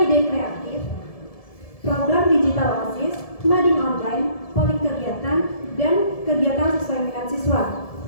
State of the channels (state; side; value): late; right; 1.7 ms